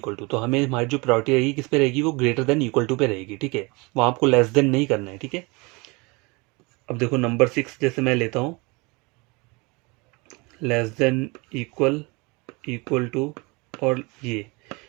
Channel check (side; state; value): left; quieter; 27.1 dB